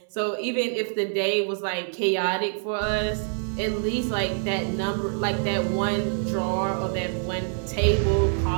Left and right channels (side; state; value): left; silent; 59 dB below the other